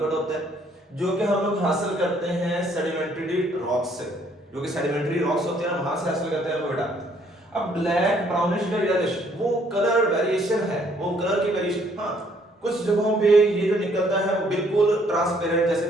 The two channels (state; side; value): normal; both; correlation 0.65